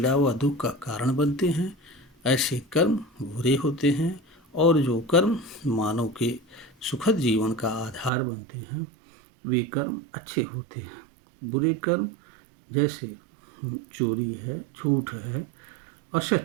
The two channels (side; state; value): left; drops out; at 8.1 s